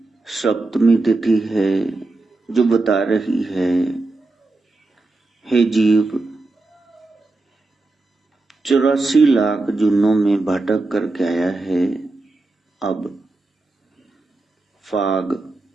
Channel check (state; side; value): quieter; left; 3.2 dB